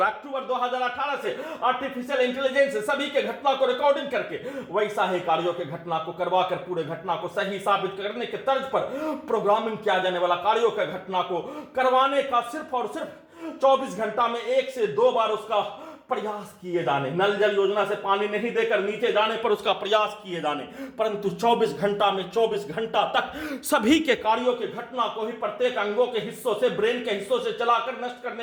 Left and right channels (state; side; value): identical; both; correlation 1.00